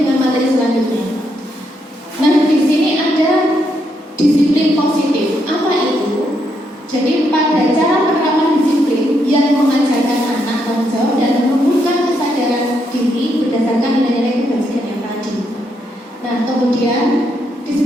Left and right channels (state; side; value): normal; both; correlation 0.78